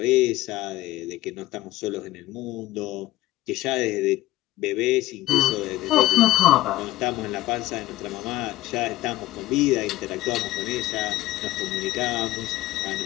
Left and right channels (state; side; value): quieter; right; 16.3 dB